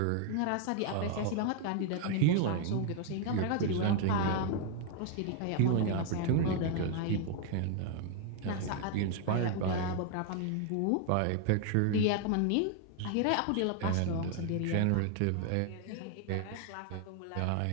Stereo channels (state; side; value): different; both; correlation 0.01